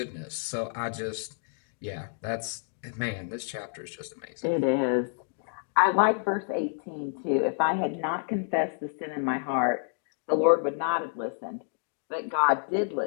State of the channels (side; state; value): right; silent; digital silence